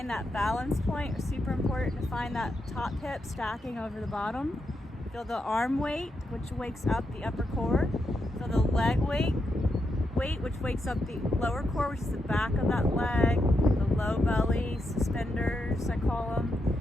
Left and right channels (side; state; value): both; normal; correlation 0.83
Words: that balance point. It's super important to find that top hip stacking over the bottom. Feel the arm weight, which wakes up the upper core. Feel the leg weight, which wakes up the lower core, which is the back of that leg, the low belly, suspenders, I call them.